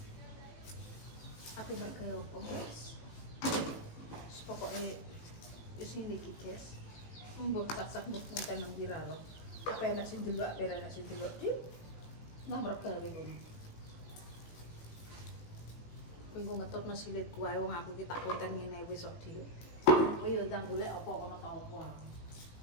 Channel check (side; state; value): right; late; 18 ms